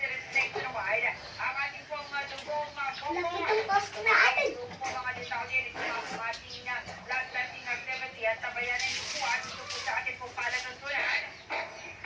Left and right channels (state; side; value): identical; both; correlation 1.00